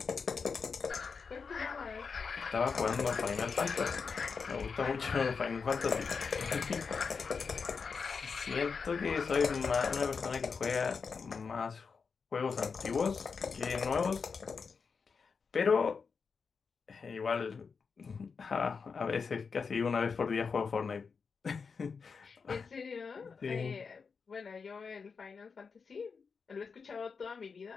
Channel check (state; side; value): quieter; right; 5.4 dB